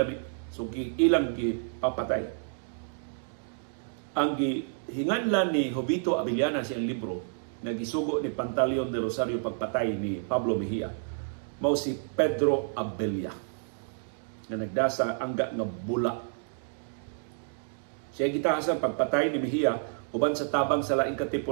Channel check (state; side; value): silent; left; digital silence